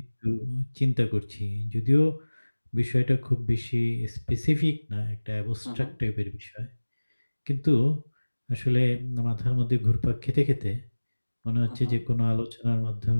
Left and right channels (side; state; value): both; inverted; correlation -1.00